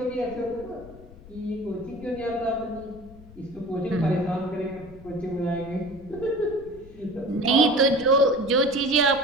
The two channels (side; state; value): left; noise; rumble, 19 dB below the sound